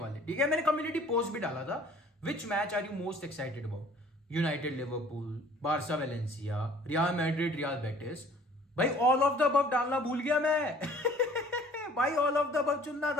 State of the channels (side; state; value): both; normal; correlation 0.52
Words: ठीक है, मैंने कम्युनिटी पोस्ट भी डाला था, which match are you most excited about? United Liverpool, Barca Valencia, Real Madrid Real Betis. भाई ऑल ऑफ द अबव डालना भूल गया मैं। भाई ऑल ऑफ द अबव चुनना